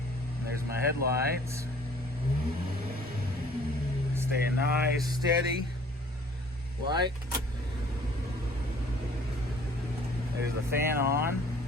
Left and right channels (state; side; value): normal; both; correlation 0.54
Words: There's my headlights. Staying nice, steady. Light. There's the fan on.